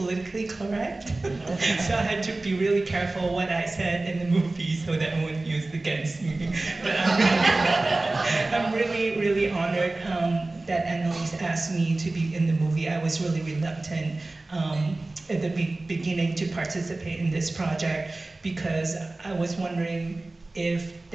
correct, so I had to be really careful what I said in the movie so that it wouldn't used against me. But I'm really, really honored that Annalise asked me to be in the movie. I was really reluctant at the beginning to participate in this project because I was wondering if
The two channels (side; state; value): left; quieter; 3.0 dB